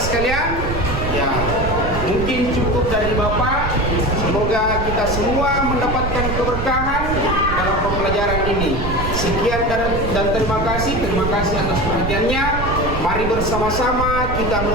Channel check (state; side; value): noise; right; rumble, 4 dB below the sound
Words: ya mungkin cukup dari Bapak. Semoga kita semua mendapatkan keberkahan dalam pembelajaran ini. Sekian dan terima kasih atas perhatiannya. Mari bersama-sama kita